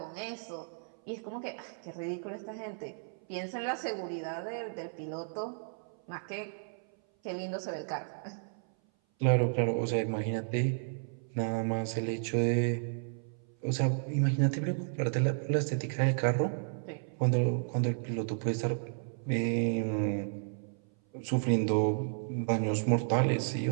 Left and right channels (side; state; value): left; silent; 56 dB below the other